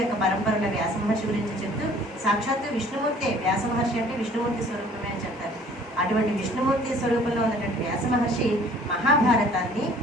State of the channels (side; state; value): both; normal; correlation 0.54